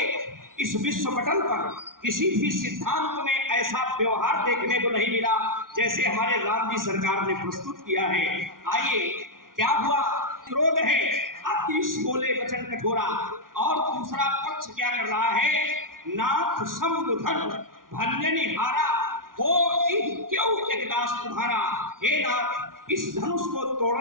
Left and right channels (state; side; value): late; left; 0.90 ms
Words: इस विश्व पटल पर किसी भी सिद्धांत में ऐसा व्यवहार देखने को नहीं मिला जैसे हमारे राम जी सरकार ने प्रस्तुत किया है। आइए क्या हुआ, क्रोध है, अतिश बोले वचन कठोरा, और दूसरा पक्ष क्या कर रहा है, नाथ समुधन भंजनी हारा हो क्यों एक दास तुम्हारा। हे नाथ, इस धनुष को